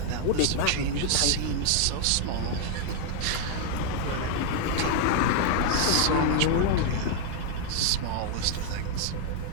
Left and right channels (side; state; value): both; different; correlation 0.00